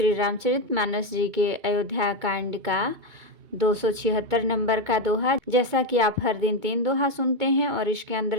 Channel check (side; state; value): left; late; 2.2 ms